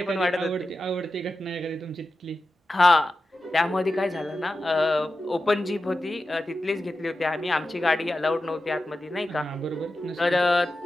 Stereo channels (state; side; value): normal; both; correlation 0.92